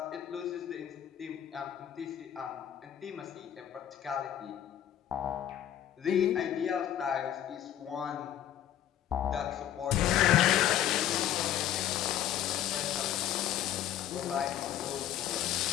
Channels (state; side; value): quieter; right; 11.2 dB